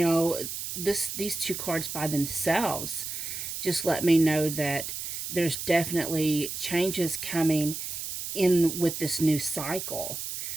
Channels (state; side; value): noise; right; hiss, 6 dB below the sound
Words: these two cards by themselves just let me know that there's definitely changes coming in with this new cycle.